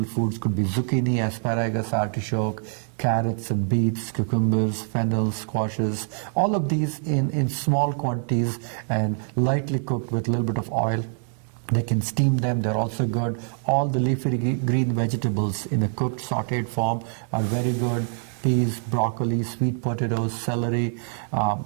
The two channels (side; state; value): left; silent; 62 dB below the other